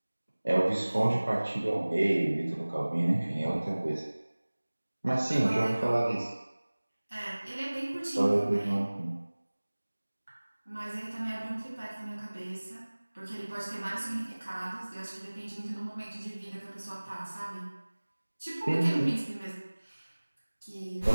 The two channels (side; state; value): both; inverted; correlation -1.00